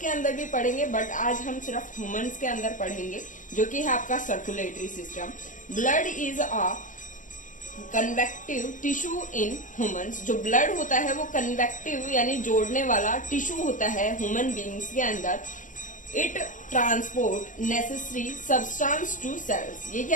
अंदर भी पढ़ेंगे, बट आज हम सिर्फ ह्यूमंस के अंदर पढ़ेंगे, जो कि है आपका circulatory system. Blood is a convective tissue in humans. जो ब्लड होता है वो कन्वेक्टिव यानी जोड़ने वाला टिश्यू होता है ह्यूमन बींग्स के अंदर। It transport necessary substance to cells. ये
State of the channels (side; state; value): right; late; 0.37 ms